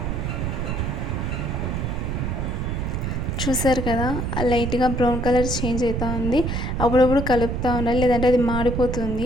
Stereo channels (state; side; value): noise; right; rumble, 1 dB below the sound